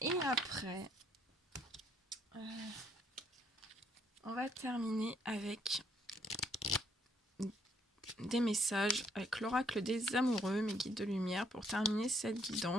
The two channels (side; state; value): both; normal; correlation 0.68